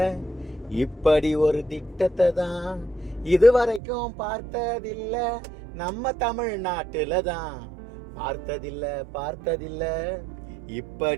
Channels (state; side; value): drops out; left; at 3.8 s